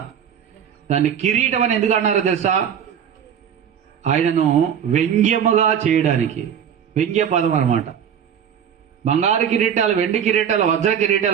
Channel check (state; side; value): quieter; left; 8.5 dB